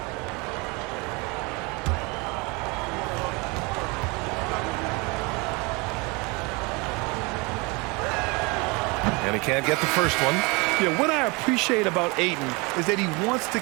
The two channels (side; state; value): left; quieter; 27.7 dB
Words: And he can't get the first one. Yeah, what I appreciate about Ayton is that he wants to